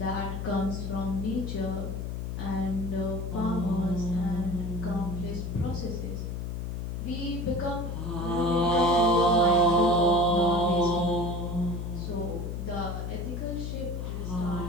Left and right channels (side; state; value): left; noise; hum, 4 dB below the sound